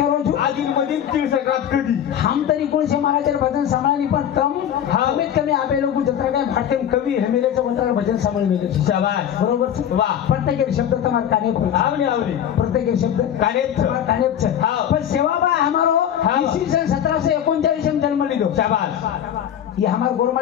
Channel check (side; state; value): right; quieter; 9.8 dB